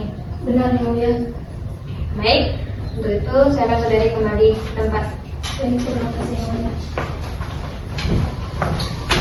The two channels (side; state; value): both; identical; correlation 1.00